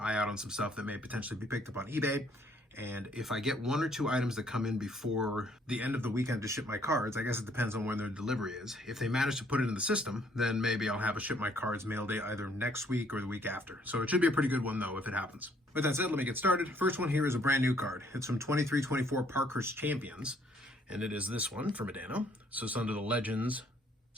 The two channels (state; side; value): normal; both; correlation 0.65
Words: out on some stuff that may potentially be picked up on eBay. And if I get 1 or 2 items that come in before the end of the weekend to ship my cards, I guess it depends on when their delivery is. If they manage to put it in the system, then maybe I'll have a ship my cards mail day either next week or the week after. So it should be a pretty good one though if it happens. With that said, let me get started. First one here is a brand new card. It's from 23-24 Parkhurst Champions. And it is this one for Modano. So it's under the Legends